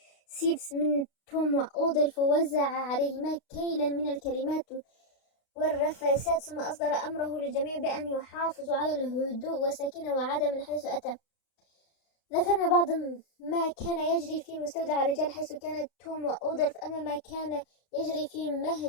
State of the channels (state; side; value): late; right; 32 ms